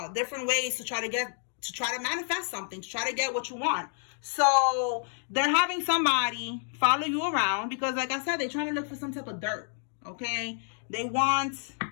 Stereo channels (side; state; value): right; silent; 58 dB below the other